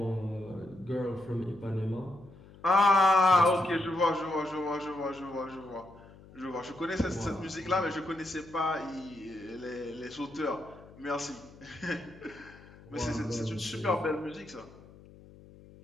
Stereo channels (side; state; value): left; noise; hum, 21 dB below the sound